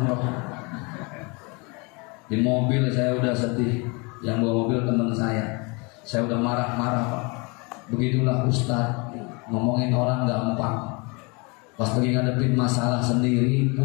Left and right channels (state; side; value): quieter; right; 29.8 dB